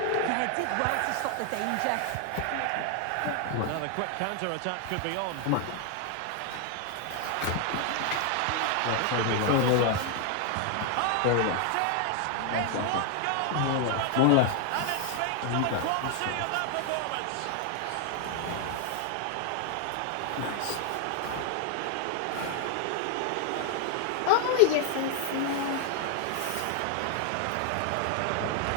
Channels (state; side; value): different; both; correlation 0.00